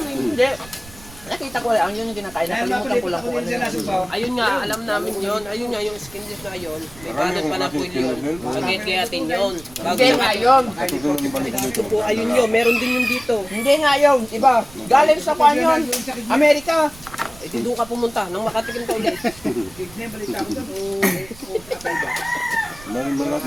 amin? Hindi. Nakita ko lang, yun yung kinakain. Nakalimutan ko lang kung ano yun. Ayun nga, alam namin yon. Ayun nga, yung skinless na yun. May kanan pa na po yun. Pagkikayatin yun. Bago Hindi nga yun. ito po, ayun yun. Meron din yung dito. Hindi nga yun. Iba. Galing sa kwan yun. Amerika. Ito doon ka pumunta, nang makatikim ka ulit.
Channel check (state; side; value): noise; right; rumble, 20 dB below the sound